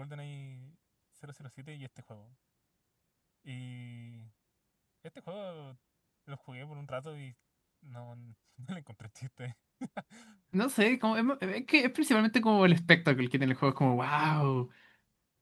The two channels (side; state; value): both; identical; correlation 1.00